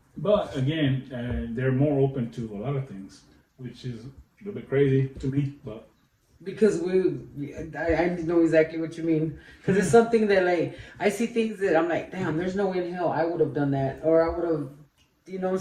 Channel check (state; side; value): identical; both; correlation 1.00